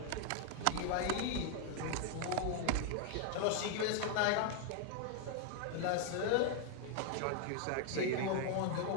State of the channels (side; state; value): both; different; correlation 0.00